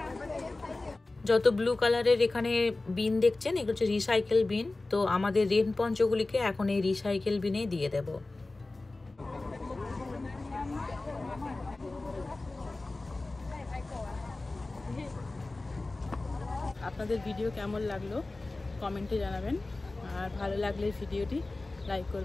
যত ব্লু কালারের এখানে বিন দেখছেন এগুলো হচ্ছে রিসাইকেল বিন। তো আমাদের রেন পঞ্চগুলিকে এখন এই রিসাইকেল বিনে দিয়ে দেব। আপনাদের ভিডিও কেমন লাগলো কমেন্টে জানাবেন, আর ভালো লাগলে ভিডিওটি লাইক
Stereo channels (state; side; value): quieter; right; 3.1 dB